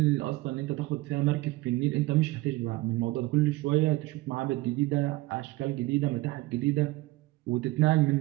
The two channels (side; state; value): left; quieter; 19.7 dB